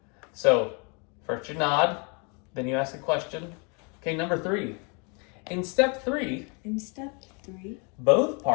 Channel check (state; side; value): quieter; right; 33.7 dB